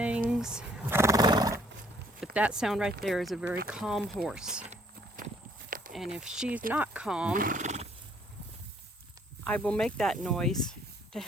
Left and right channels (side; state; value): both; normal; correlation 0.63